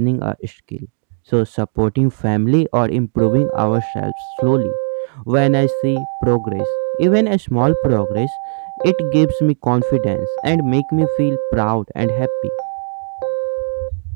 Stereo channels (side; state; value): left; silent; digital silence